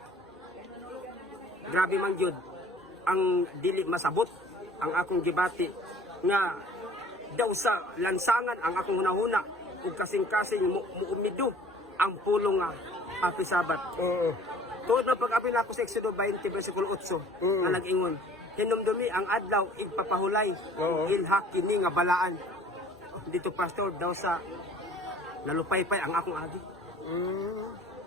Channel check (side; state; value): both; normal; correlation 0.51